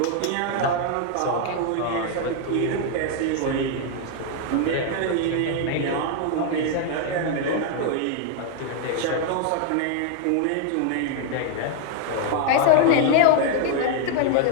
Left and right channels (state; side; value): different; both; correlation 0.00